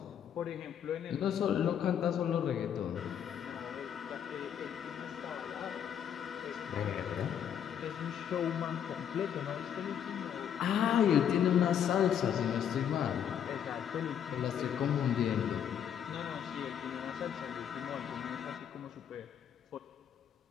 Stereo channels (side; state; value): right; quieter; 8.9 dB